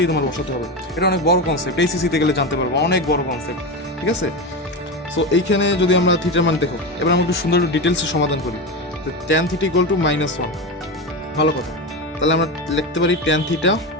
তোমার বসাতে হবে। এটা অনেক বড় কনসেপ্ট, এইচএসসিতে গেলে জানতে পারবো, অনেক বড় কনসেপ্ট, ঠিক আছে? সো এইখানে যদি আমরা থিটার মান দেখো, এবার আমরা একটু সুন্দর একটু ডিটেলসে সমাধান করি। তো ট্যান থিটা ইকুয়াল টু -1, ভালো কথা। তাহলে আমরা লিখতে পারি tan theta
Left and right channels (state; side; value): normal; both; correlation 0.19